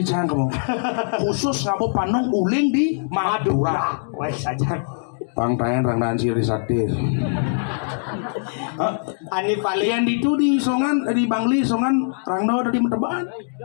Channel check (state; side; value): silent; right; digital silence